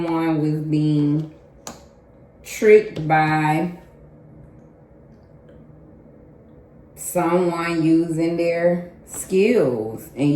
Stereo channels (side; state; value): both; identical; correlation 1.00